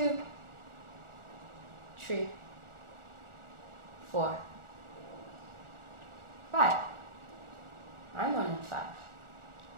3, 4, 5. I'm 1 in 5.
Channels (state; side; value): late; left; 1.4 ms